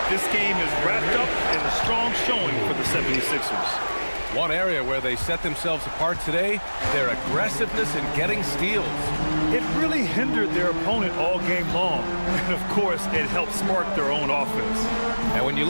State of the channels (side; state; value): both; inverted; correlation -1.00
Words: This game is wrapped up in a strong showing for the 76ers. One area where they set themselves apart today, their aggressiveness in getting steals. It really hindered their opponent all game long. And of course, it helped spark their own offense. And when you